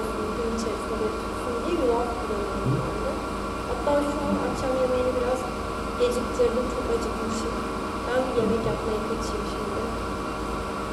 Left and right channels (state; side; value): identical; both; correlation 1.00